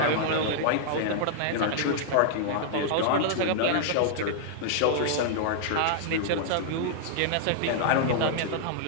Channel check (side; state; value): both; different; correlation -0.01